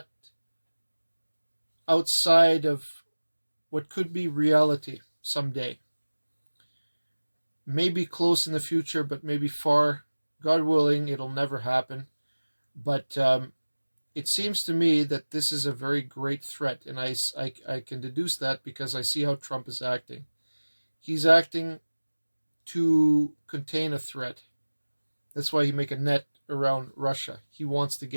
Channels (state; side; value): inverted; both; correlation -1.00